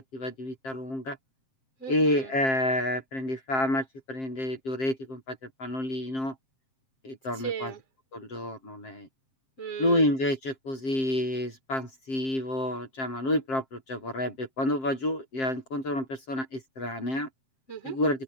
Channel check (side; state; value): right; late; 7.6 ms